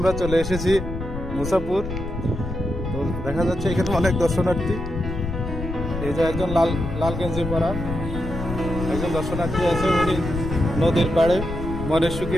চলে এসেছি মুসাপুর। তো দেখা যাচ্ছে এখানে অনেক দর্শনার্থী। এই যে একজন লাল লাল গেঞ্জি পরা একজন দর্শনার্থী আছে, উনি নদীর পাড়ে মনের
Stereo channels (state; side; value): noise; left; rumble, 6 dB below the sound